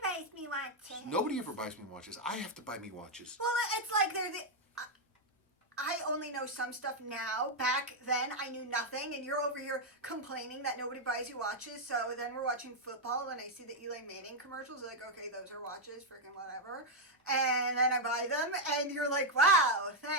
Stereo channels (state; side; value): normal; both; correlation 0.00